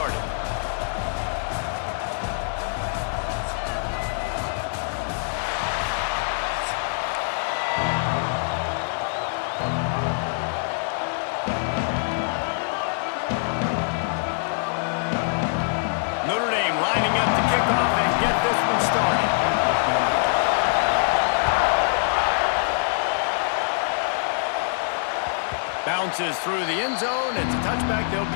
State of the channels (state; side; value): silent; right; digital silence